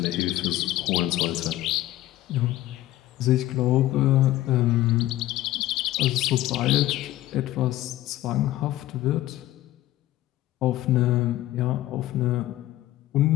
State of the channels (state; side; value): quieter; right; 15.2 dB